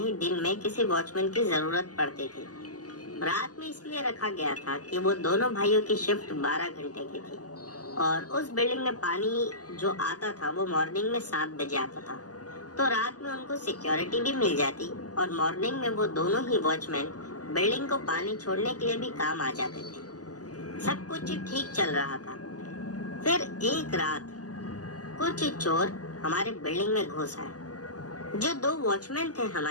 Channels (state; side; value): late; right; 0.67 ms